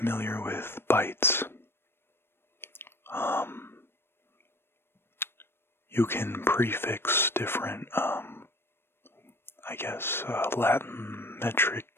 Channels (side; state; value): right; late; 0.11 ms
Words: with bytes. You can prefix different, Latin metric